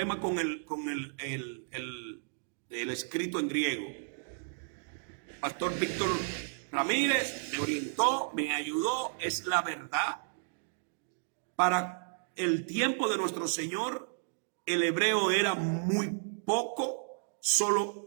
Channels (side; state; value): left; silent; digital silence